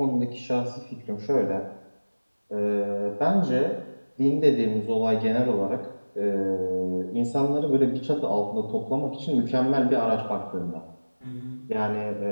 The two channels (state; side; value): inverted; both; correlation -1.00